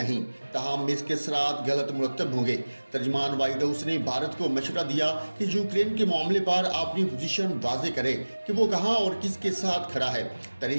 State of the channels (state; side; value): inverted; both; correlation -1.00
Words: تاہم اس کے اثرات غلط مرتب ہوں گے۔ ترجمان وائٹ ہاؤس نے بھارت کو مشورہ دیا کہ یوکرین کے معاملے پر اپنی پوزیشن واضح کرے کہ وہ کہاں اور کس کے ساتھ کھڑا ہے۔